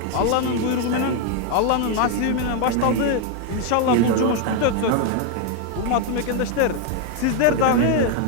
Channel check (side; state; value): both; different; correlation 0.01